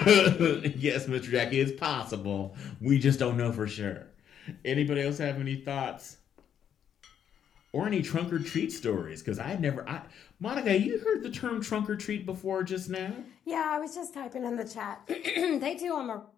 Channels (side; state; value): right; quieter; 9.0 dB